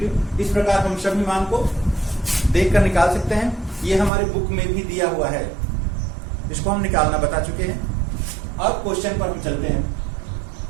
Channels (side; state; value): left; drops out; at 4.1 s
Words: इस प्रकार हम सभी मान को देखकर निकाल सकते हैं, ये हमारे बुक में भी दिया हुआ है, इसको हम निकालना बता चुके हैं। अब क्वेश्चन पर हम चलते हैं।